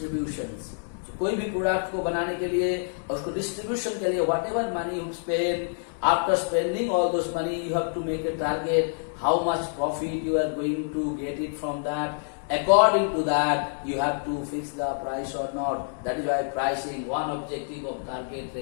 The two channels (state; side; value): silent; right; digital silence